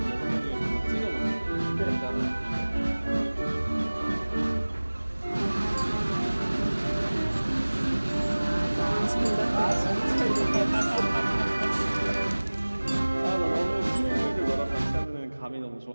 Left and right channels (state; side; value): inverted; both; correlation -1.00